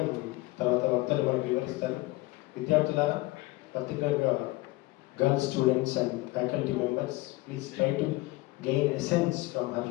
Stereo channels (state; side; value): quieter; right; 20.6 dB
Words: తర్వాత వక్తలు మనకు వివరిస్తారు. విద్యార్థులారా, పర్టికులర్గా girl students and faculty members, please try to gain essence from her